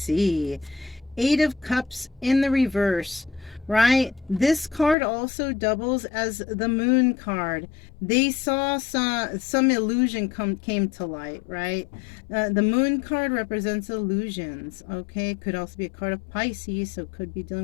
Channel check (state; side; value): drops out; right; at 5.0 s